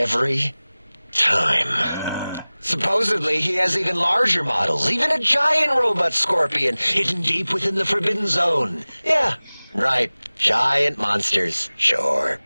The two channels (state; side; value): inverted; both; correlation -0.99